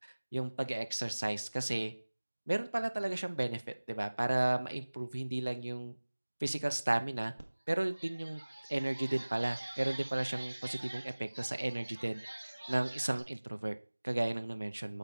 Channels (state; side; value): inverted; both; correlation -1.00